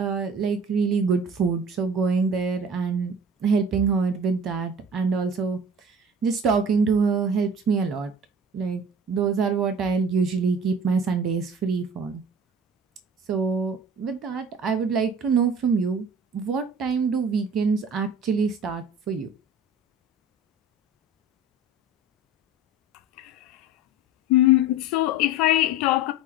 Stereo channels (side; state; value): both; normal; correlation 0.41